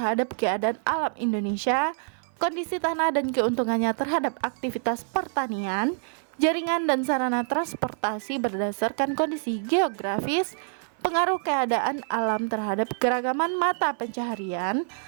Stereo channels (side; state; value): left; silent; 55 dB below the other